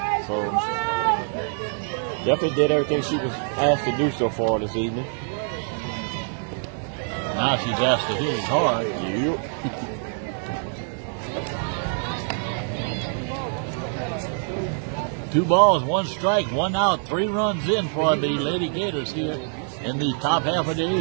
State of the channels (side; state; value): left; silent; 57 dB below the other